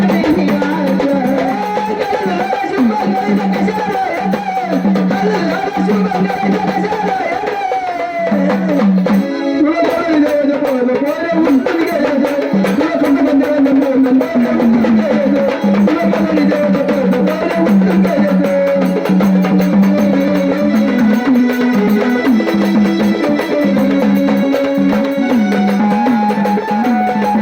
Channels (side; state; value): both; identical; correlation 1.00